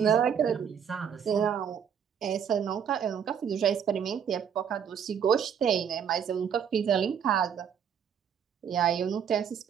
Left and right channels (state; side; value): quieter; left; 8.0 dB